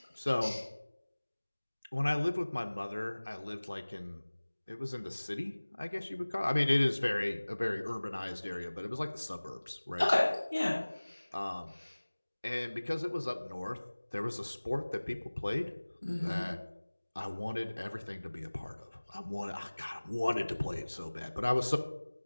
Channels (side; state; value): both; inverted; correlation -1.00